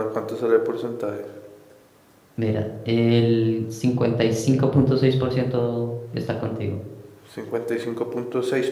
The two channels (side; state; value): both; identical; correlation 1.00